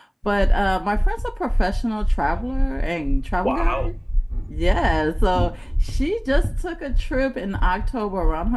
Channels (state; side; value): identical; both; correlation 1.00